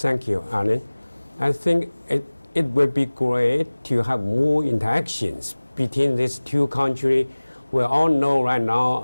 you, Alan. I think it would be great to have more interactions between these two countries. We all know right now,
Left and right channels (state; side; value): inverted; both; correlation -1.00